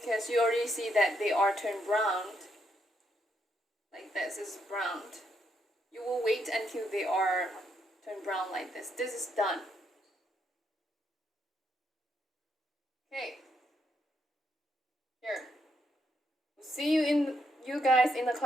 you already see that they are turned brown. Like this is browned. You will wait until they are turned brown like this. This is done. Okay. Here. See you guys in the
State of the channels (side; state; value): both; normal; correlation 0.77